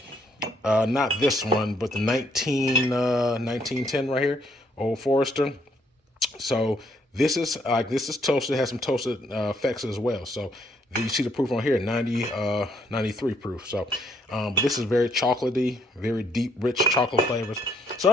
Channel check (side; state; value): both; normal; correlation 0.70